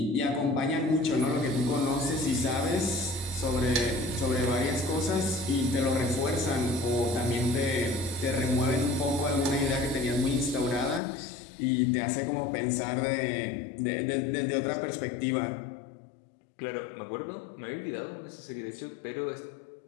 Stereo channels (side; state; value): right; drops out; at 11.0 s